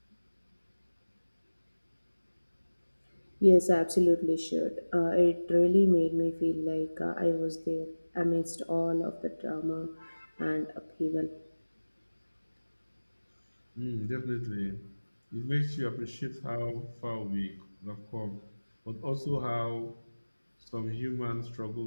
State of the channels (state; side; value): inverted; both; correlation -1.00